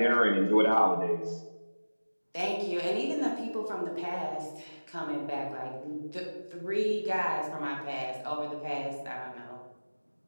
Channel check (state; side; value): inverted; both; correlation -1.00